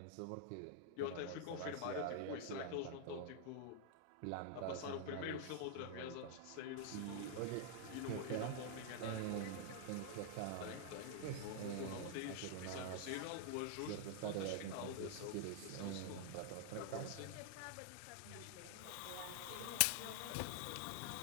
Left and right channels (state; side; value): different; both; correlation 0.00